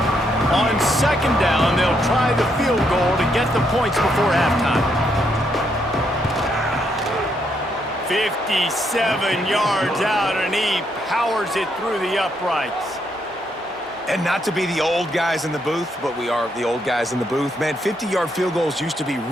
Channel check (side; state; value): both; normal; correlation 0.76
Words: On 2nd down, they'll try the field goal to get the points before halftime. 57 yards out, and he powers it through the uprights. And not to be the old guys in the booth, but we are the old guys in the booth. Man, 50-yard field goals used to be